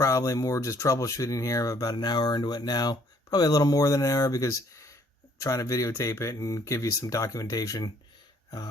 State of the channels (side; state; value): both; normal; correlation 0.62